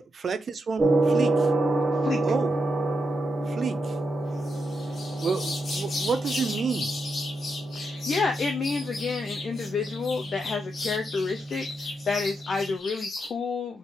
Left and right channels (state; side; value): normal; both; correlation 0.83